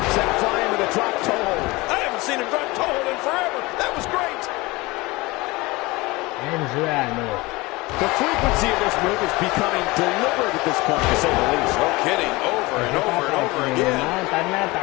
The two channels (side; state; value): right; quieter; 22.5 dB